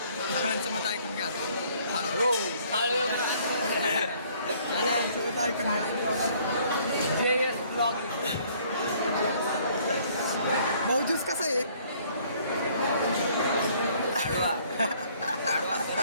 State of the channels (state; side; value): inverted; both; correlation -0.60